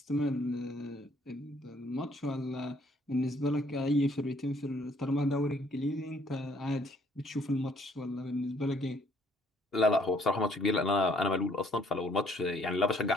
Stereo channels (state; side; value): normal; both; correlation 0.64